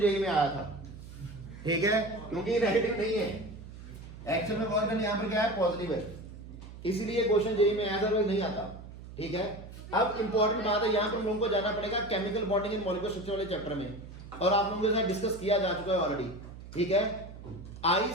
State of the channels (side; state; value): right; noise; hum, 14 dB below the sound